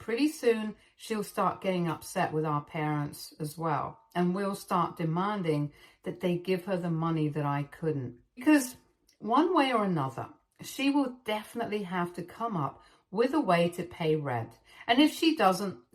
soon she'll start getting upset with our parents as well, and we'll start demanding that they give her the money that I couldn't. Because one way or another, she will definitely have to come up with a way to pay rent. And if she doesn't,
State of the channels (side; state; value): both; identical; correlation 1.00